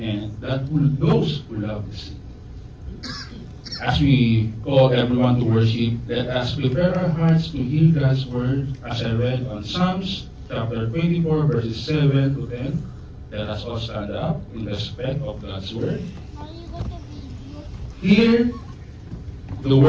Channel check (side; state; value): both; identical; correlation 1.00